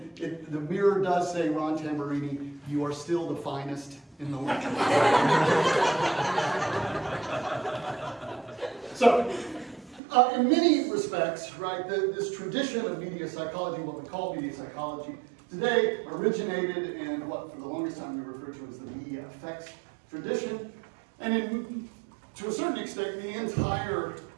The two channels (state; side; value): drops out; left; at 10.0 s